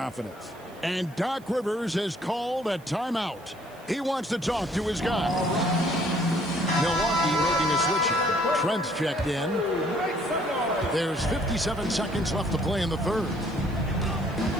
And Doc Rivers has called a timeout. He wants to talk to his guy. Milwaukee making a switch. Trent's checked in. There's 57 seconds left to play in the third.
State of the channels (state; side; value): noise; right; hiss, 27 dB below the sound